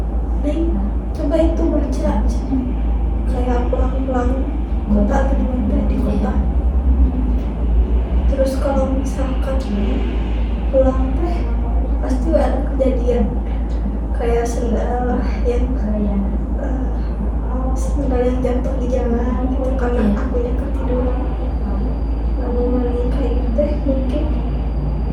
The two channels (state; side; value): identical; both; correlation 1.00